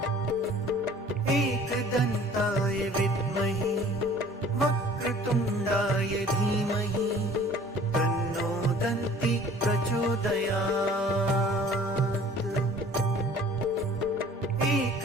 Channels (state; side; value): normal; both; correlation 0.50